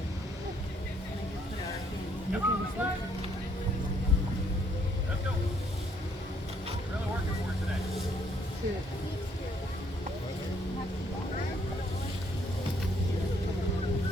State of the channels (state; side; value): normal; both; correlation 0.68